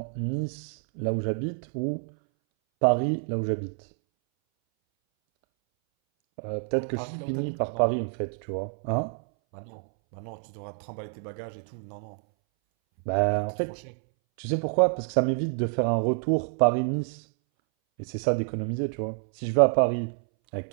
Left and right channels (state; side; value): silent; left; 60 dB below the other